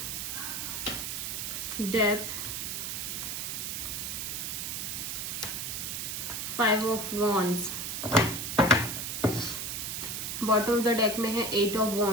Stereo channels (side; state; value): right; noise; hiss, 3 dB below the sound